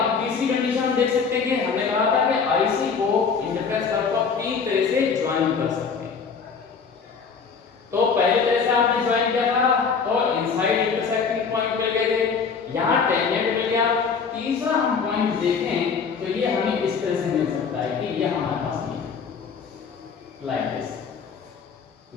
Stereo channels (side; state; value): right; quieter; 5.7 dB